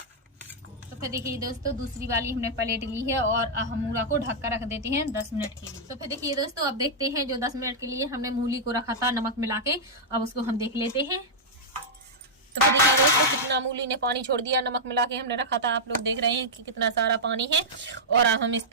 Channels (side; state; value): both; normal; correlation -0.08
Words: तो फिर देखिए दोस्तों, दूसरी वाली हमने प्लेट ली है और हम मूला को ढक कर रख देते हैं 10 मिनट के लिए। तो फिर देखिए दोस्तों, अब देखते हैं जो 10 मिनट के लिए हमने मूली को रखा था नमक मिला के, अब उसको हम देख लेते हैं। तो फिर देखिए दोस्तों, कितना मूली ने पानी छोड़ दिया। नमक मिला के हमने रखा था, आप लोग देख रहे हैं कि कितना सारा पानी है। और अब हम इस